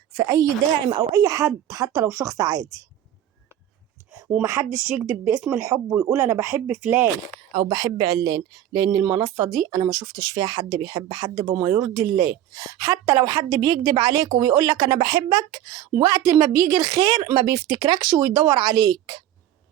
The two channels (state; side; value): quieter; left; 11.7 dB